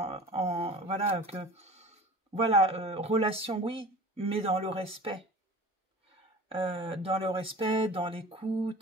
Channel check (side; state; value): both; normal; correlation 0.40